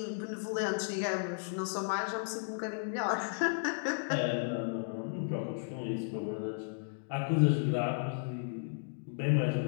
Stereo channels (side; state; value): right; silent; digital silence